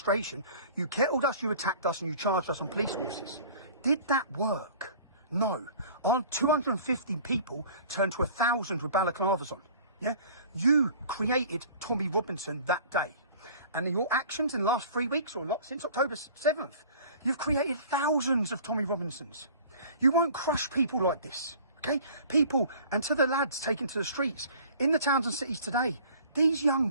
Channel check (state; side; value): inverted; both; correlation -0.47